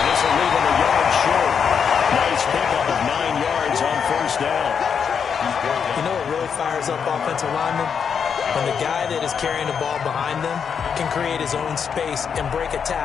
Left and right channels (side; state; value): right; quieter; 6.9 dB